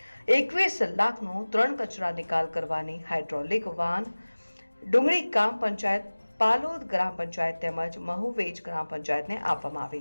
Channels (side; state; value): both; inverted; correlation -1.00